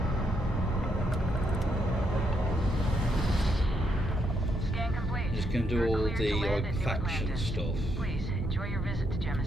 check. Scan complete. Just going to do all the like faction stuff. Please enjoy your visit to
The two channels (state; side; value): normal; both; correlation 0.77